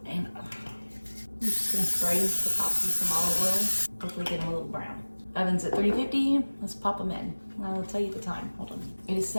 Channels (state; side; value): inverted; both; correlation -1.00